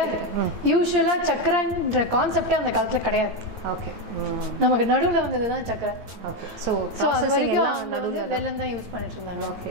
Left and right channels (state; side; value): late; left; 9.2 ms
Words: யூஸ்வலாக சர்க்கரைன்ற கான்செப்டே அந்த காலத்தில் கிடையாது. ஓகே. நமக்கு நடுவில் வந்தது தான் சர்க்கரை. ஓகே. ஸோ அது வரைக்கும் நடுவில் வெல்லம் தான் யூஸ் பண்ணிட்டு இருந்தாங்க.